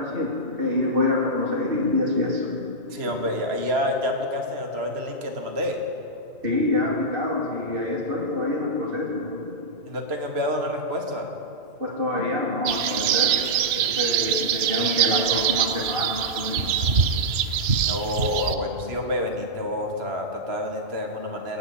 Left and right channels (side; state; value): left; late; 2.9 ms